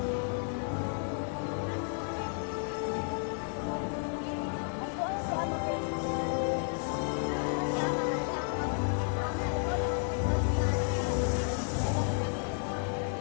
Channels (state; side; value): silent; right; 56 dB below the other